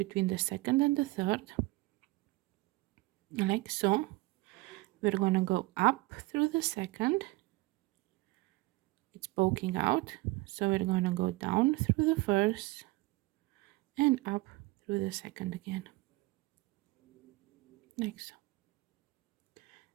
the second and the third, like so. We're gonna go up through the second, it's poking out, so we're gonna go down through the first and up through the second again, like so.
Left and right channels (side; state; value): left; quieter; 21.4 dB